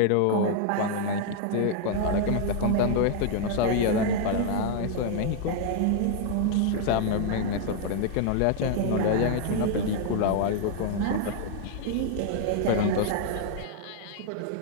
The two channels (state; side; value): different; both; correlation 0.00